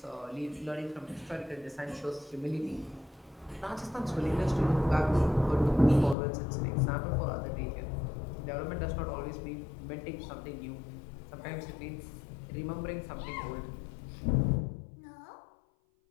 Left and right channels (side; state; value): right; drops out; at 6.2 s